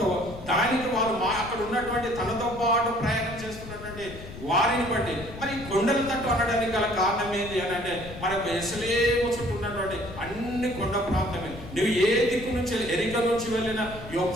దానికి వాళ్ళు అక్కడ ఉన్నటువంటి తనతో పాటు ప్రయాణం చేస్తున్నటువంటి వారిని బట్టి మరి కొండల తట్టు అనడానికి గల కారణం ఏంటి అని అంటే, మనకు యెరూషలేము చుట్టూ ఉన్నటువంటి అన్ని కొండ ప్రాంతమే. నువ్వు ఏ దిక్కు నుంచి ఎరిక నుంచి వెళ్ళినా,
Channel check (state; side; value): noise; left; rumble, 13 dB below the sound